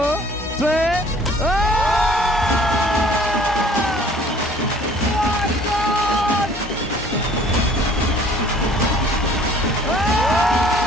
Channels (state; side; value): normal; both; correlation 0.53